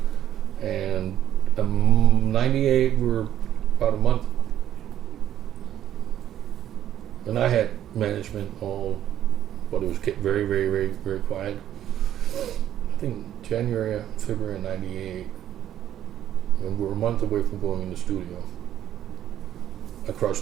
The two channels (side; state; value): left; quieter; 11.3 dB